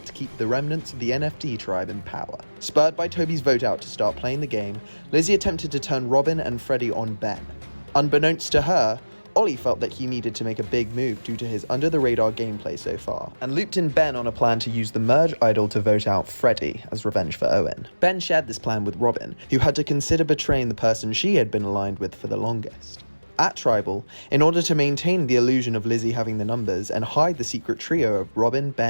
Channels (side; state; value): both; inverted; correlation -1.00